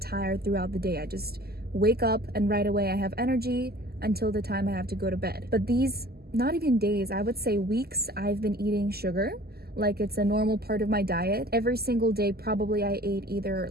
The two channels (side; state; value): left; late; 0.46 ms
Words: throughout the day. I just wake up and right away I have energy until the time I have to go to bed. But these, not even days, I would say weeks, I've been eating sugar like it's a normal part of my diet. Every single day probably I ate either